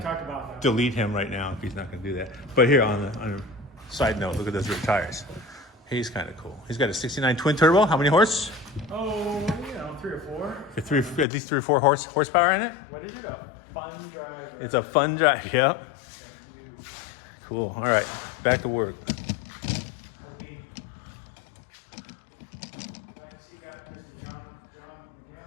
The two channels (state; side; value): drops out; right; at 11.2 s